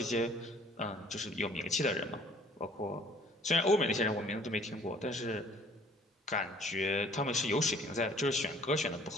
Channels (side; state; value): both; normal; correlation 0.55